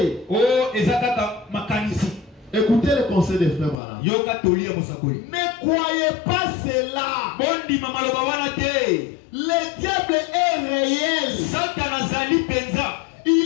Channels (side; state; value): right; drops out; at 3.8 s